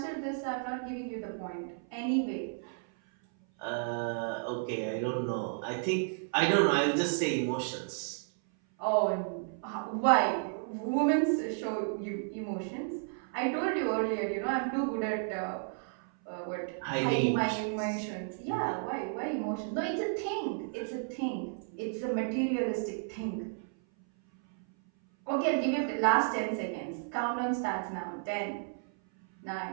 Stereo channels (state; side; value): silent; left; 56 dB below the other